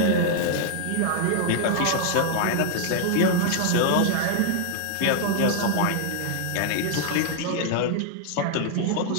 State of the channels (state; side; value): different; both; correlation 0.00